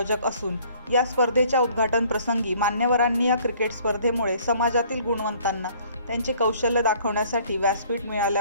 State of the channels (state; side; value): inverted; both; correlation -0.57